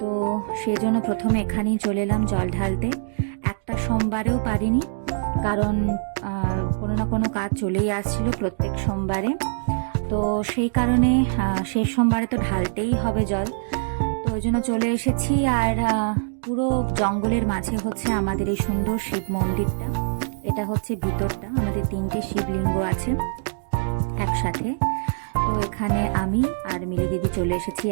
সেই জন্য প্রথমে এখানেই চলে এলাম জল ঢালতে। একটা সোমবারেও পারিনি, কারণ কোনো না কোনো কাজ চলেই আসছিল প্রত্যেক সোমবারে। তো সেই কারণে শেষ সোমবারে তো ঢালতেই হবে জল। তো ওই জন্য চলে এসেছি। আর পুরো জঙ্গলের মাঝে হচ্ছে আমাদের এই সুন্দর শিব মন্দিরটা। এটা হচ্ছে ভিতরটা, আমাদের 3টে শিবলিঙ্গ আছে একসাথে। তো এখানে আমি আর মিলি দিদি চলে এসেছি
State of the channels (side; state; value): left; silent; digital silence